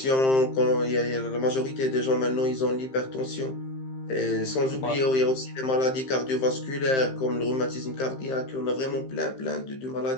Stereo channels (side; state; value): right; late; 15 ms